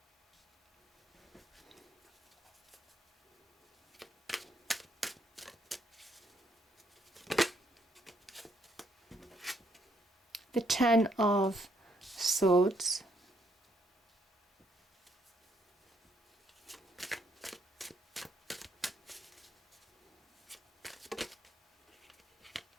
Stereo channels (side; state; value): both; normal; correlation 0.72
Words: the Ten of Swords,